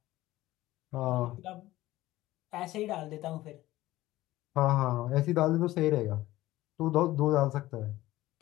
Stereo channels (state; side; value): quieter; right; 16.6 dB